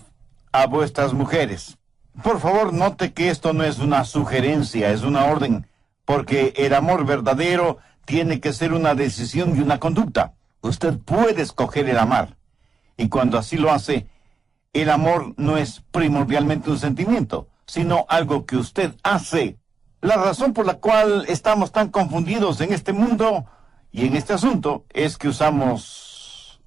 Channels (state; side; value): quieter; left; 5.0 dB